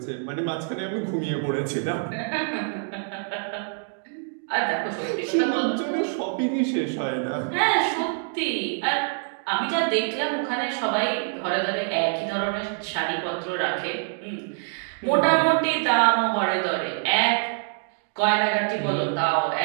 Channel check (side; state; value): left; silent; 61 dB below the other